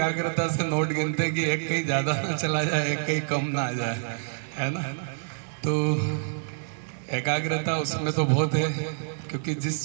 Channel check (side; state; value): left; silent; digital silence